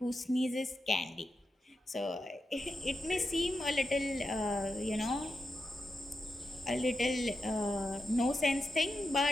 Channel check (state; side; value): normal; both; correlation 0.88